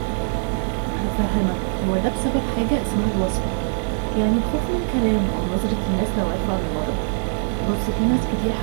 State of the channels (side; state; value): left; silent; 64 dB below the other